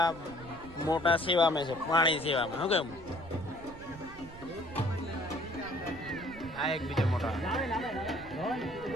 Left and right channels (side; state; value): right; noise; rumble, 17 dB below the sound